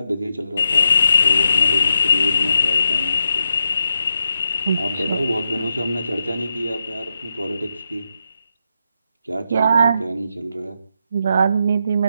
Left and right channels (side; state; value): both; inverted; correlation -0.83